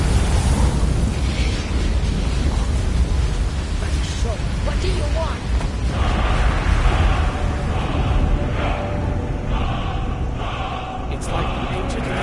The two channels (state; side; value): identical; both; correlation 1.00